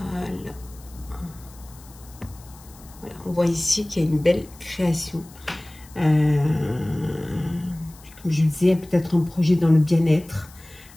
Voilà, on voit ici qu'il y a une belle création. Comme je le disais, peut-être un projet dans le bien-être.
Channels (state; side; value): noise; left; hiss, 23 dB below the sound